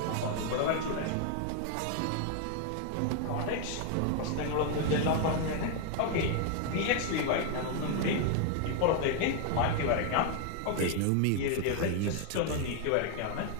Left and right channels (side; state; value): both; different; correlation 0.00